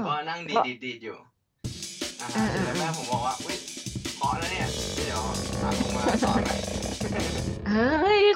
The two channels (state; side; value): identical; both; correlation 1.00